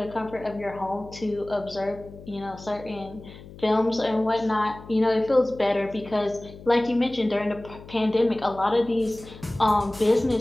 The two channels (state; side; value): noise; left; hum, 17 dB below the sound